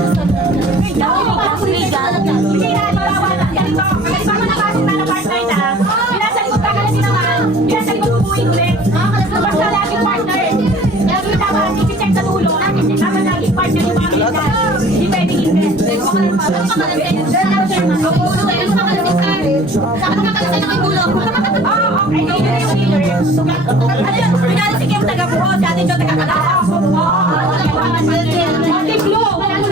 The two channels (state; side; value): normal; both; correlation 0.48